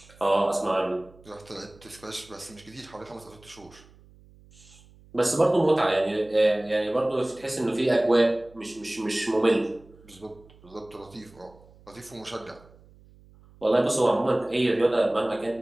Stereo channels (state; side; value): noise; right; hum, 26 dB below the sound